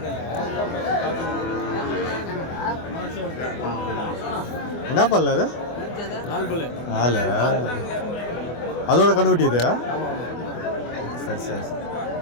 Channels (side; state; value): right; late; 24 ms